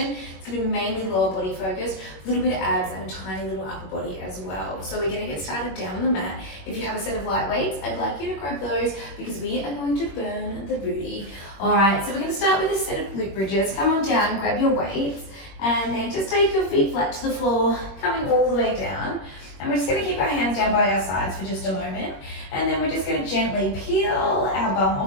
It's going to be mainly lower body focused, a little bit of abs and a tiny little upper body as well. So we're going to get started down on the mat. If you have a set of light weights, I'd like you to grab those because we are going to burn the booty. All right, so we're going to start with a set of glute bridges. Come on down, grab your weights, and then just take your feet flat to the floor, coming all the way down. And we're just going to keep our hands down by our sides for just a moment. And then we're just going to gently peel our bum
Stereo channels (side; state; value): right; late; 21 ms